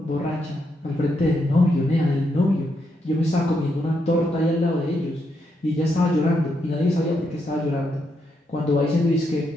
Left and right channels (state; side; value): normal; both; correlation 0.80